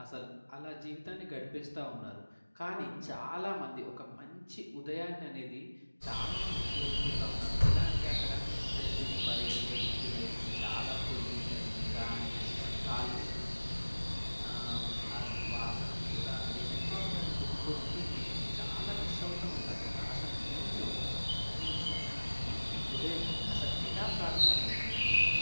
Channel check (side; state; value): both; inverted; correlation -1.00